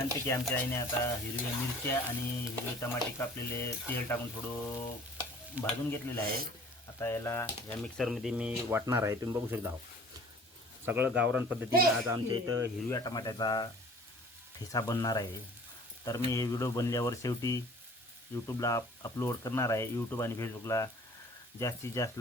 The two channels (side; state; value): both; normal; correlation 0.49